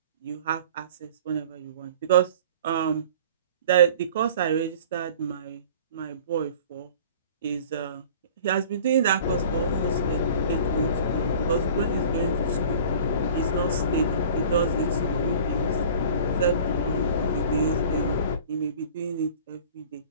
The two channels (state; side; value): inverted; both; correlation -0.44